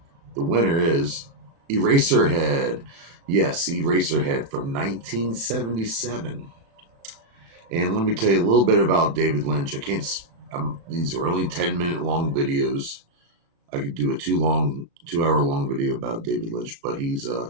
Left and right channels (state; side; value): late; left; 36 ms